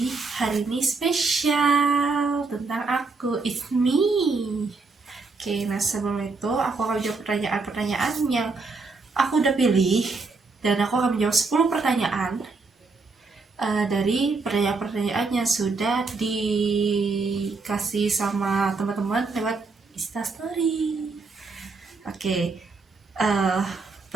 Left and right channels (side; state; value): left; quieter; 4.0 dB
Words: hari ini spesial tentang aku, it's me. Oke, nah sebelum itu aku akan menjawab pertanyaan-pertanyaan yang aku udah pilih, dan aku akan menjawab 10 pertanyaan dari pertanyaan-pertanyaan yang sudah dikasih sama teman-teman lewat Instastory. Oke,